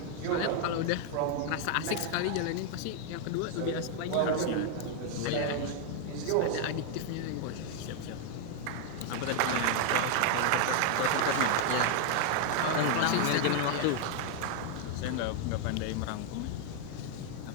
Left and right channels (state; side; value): different; both; correlation 0.00